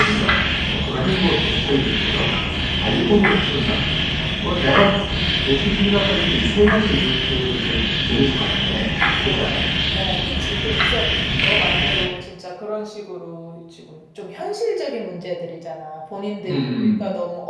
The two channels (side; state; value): both; identical; correlation 1.00